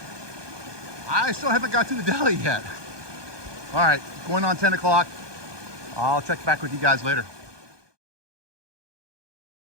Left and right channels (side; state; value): left; late; 1.2 ms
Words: I still haven't got to the deli yet. All right, going on 10 o'clock. I'll check back with you guys later.